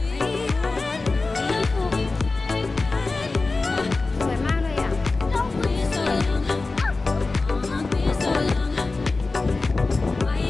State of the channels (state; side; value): quieter; right; 3.6 dB